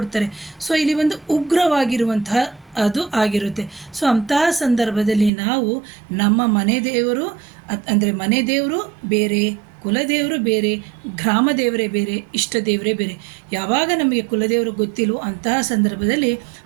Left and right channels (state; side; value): drops out; left; at 5.3 s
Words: ಸೊ ಇಲ್ಲಿ ಒಂದು ಉಗ್ರವಾಗಿರುವಂತಹ ಅದು ಆಗಿರುತ್ತೆ. ಸೊ ಅಂತಹ ಸಂದರ್ಭದಲ್ಲಿ ನಾವು ನಮ್ಮ ಮನೆ ದೇವರು ಅಂದರೆ ಮನೆ ದೇವರು ಬೇರೆ, ಕುಲದೇವರು ಬೇರೆ, ಗ್ರಾಮ ದೇವರೇ ಬೇರೆ, ಇಷ್ಟ ದೇವರೇ ಬೇರೆ. ಯಾವಾಗ ನಮಗೆ ಕುಲದೇವರು ಗೊತ್ತಿಲ್ಲವೋ ಅಂತಹ ಸಂದರ್ಭದಲ್ಲಿ